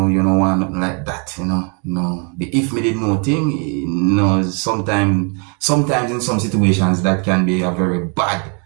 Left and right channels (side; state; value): left; quieter; 37.0 dB